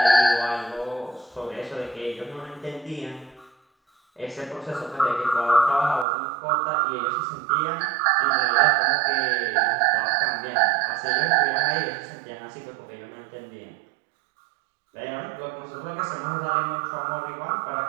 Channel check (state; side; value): drops out; left; at 6.1 s